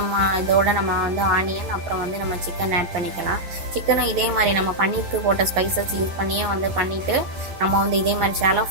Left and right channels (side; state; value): left; late; 11 ms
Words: இதோட நம்ம வந்து ஆனியன் அப்புறம் வந்து நம்ம சிக்கன் ஆட் பண்ணிக்கலாம். சிக்கனும் இதே மாதிரி நம்ம பன்னீருக்கு போட்ட ஸ்பைசஸ் யூஸ் பண்ணியே வந்து பண்ணிவிட்டு நம்ம வந்து இதே மாதிரி ஷாலோ